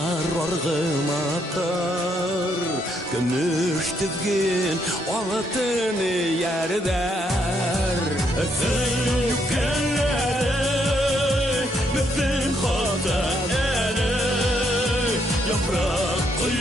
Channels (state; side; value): normal; both; correlation 0.74